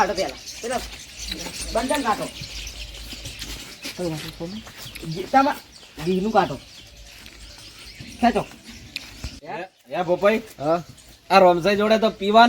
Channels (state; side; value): identical; both; correlation 1.00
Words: પેલા બંધન કાઢો ગીતામાં ઘીનું કાઢો ખેંચો હે ભોપાઈ આ રોમસાઈ જોડે તો